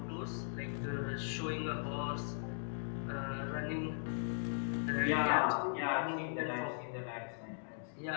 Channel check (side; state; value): right; silent; digital silence